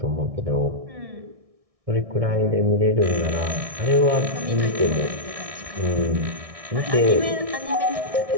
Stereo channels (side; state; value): left; late; 1.6 ms